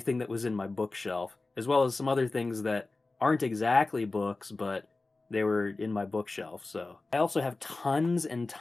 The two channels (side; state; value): right; quieter; 3.4 dB